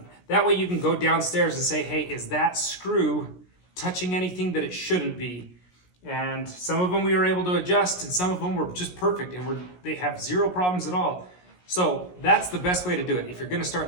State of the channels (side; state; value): right; late; 17 ms